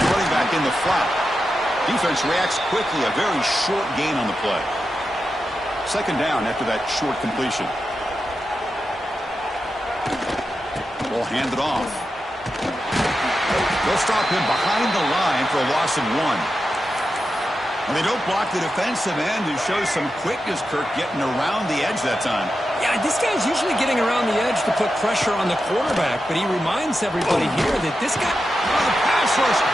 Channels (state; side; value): normal; both; correlation 0.89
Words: running back in the flat. Defense reacts quickly, a very short gain on the play. Second down after that short completion. Ball handed off. They'll stop him behind the line for a loss of 1. And they don't block the defensive end, who shows some quickness, Kirk, getting around the edge that time. Yeah, this guy's usually getting around the edge to put pressure on the quarterback, but he reminds everybody here that this guy... The pass rush